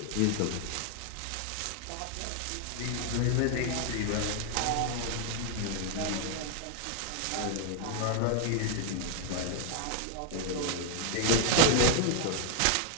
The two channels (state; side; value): different; both; correlation 0.00